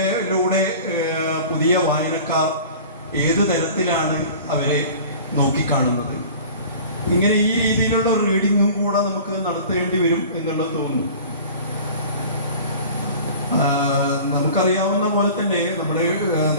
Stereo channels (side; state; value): both; inverted; correlation -0.42